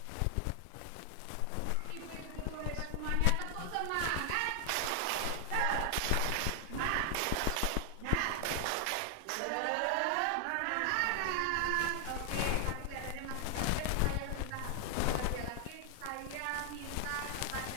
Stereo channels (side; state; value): both; different; correlation 0.00